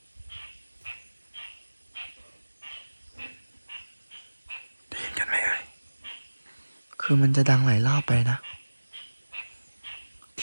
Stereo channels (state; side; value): inverted; both; correlation -1.00